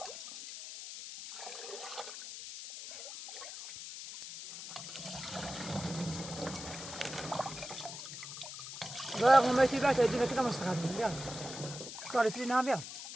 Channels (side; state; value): left; noise; hiss, 10 dB below the sound